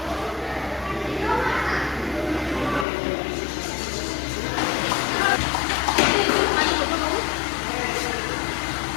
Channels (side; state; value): right; drops out; at 2.9 s